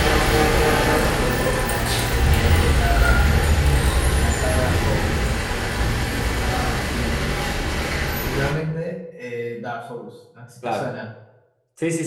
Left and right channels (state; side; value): identical; both; correlation 1.00